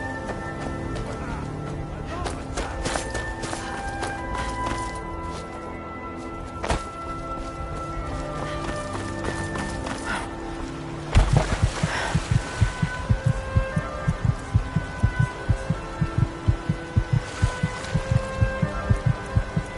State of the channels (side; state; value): both; identical; correlation 1.00